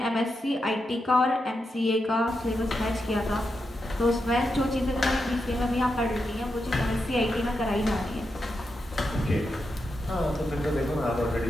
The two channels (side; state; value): both; normal; correlation 0.86